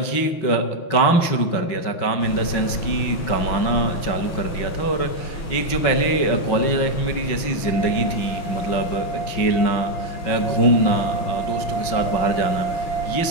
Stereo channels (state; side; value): late; right; 5.9 ms